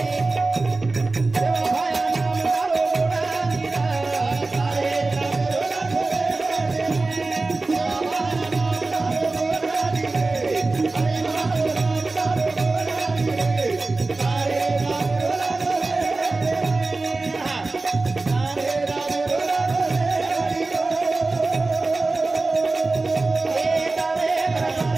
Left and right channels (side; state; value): left; quieter; 3.4 dB